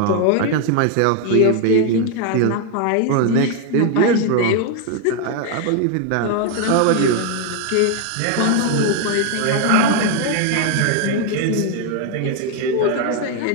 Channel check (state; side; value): different; both; correlation 0.01